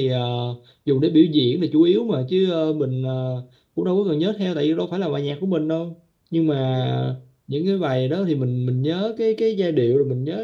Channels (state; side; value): identical; both; correlation 1.00